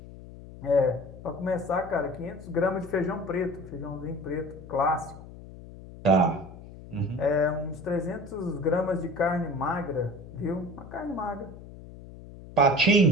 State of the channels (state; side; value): noise; left; hum, 16 dB below the sound